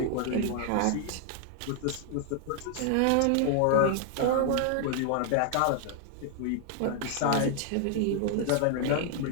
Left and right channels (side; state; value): both; different; correlation 0.00